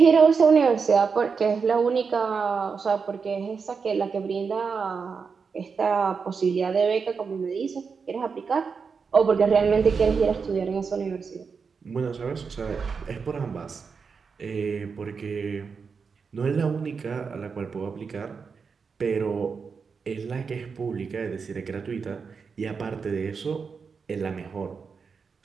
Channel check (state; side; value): quieter; left; 5.5 dB